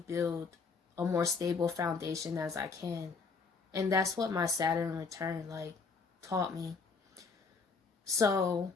a more stable foundation as I can. And that's what my Saturn return taught me. So,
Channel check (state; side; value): quieter; right; 4.6 dB